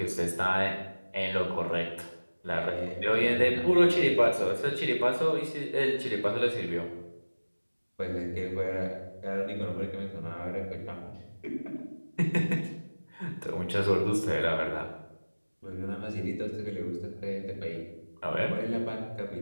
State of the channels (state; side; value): inverted; both; correlation -1.00